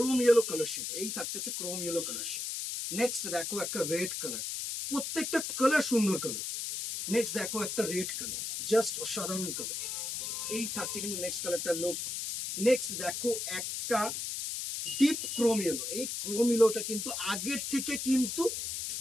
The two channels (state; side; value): noise; left; hiss, 3 dB below the sound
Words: ইয়েলো কালার শেড। এই থাকছে হচ্ছে chrome yellow colour shade. Next দেখো একটা রেড কালার, প্রত্যেকটা কালার সুন্দর কালার। নেক্সট দেখো একটা রেড কালার, জাস্ট অসাধারণ কালার। এই থাকছে কিন্তু নেক্সট কালারটা লুক। নেক্সট দেখো একটা ডিপ ক্রোম ইয়েলো। এই ক্রোম ইয়েলোটা কিন্তু আগের থেকে কিন্তু